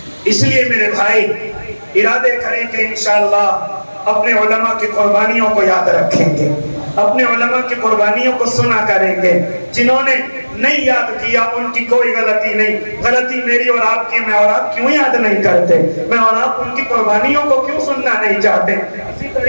اس لیے میرے بھائی ارادے کریں کہ انشاءاللہ اپنے علماء کی قربانیوں کو یاد رکھیں گے, اپنے علماء کی قربانیوں کو سنا کریں گے. جنہوں نے نہیں یاد کیا ان کی کوئی غلطی نہیں, غلطی میری اور آپ کی. میں اور آپ کیوں یاد نہیں کرتے, میں اور آپ ان کی قربانیوں کو کیوں سننا نہیں چاہتے. اسی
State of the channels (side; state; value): both; inverted; correlation -1.00